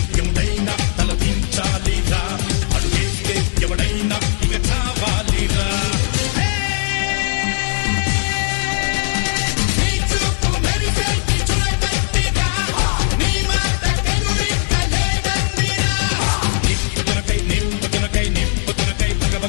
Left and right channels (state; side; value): silent; right; 66 dB below the other